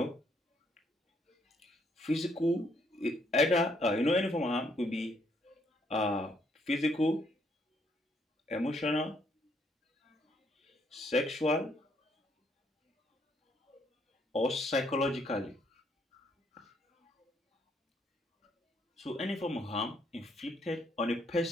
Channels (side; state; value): both; normal; correlation 0.70